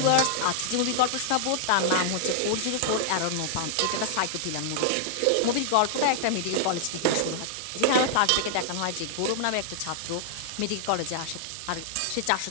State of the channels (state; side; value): different; both; correlation -0.01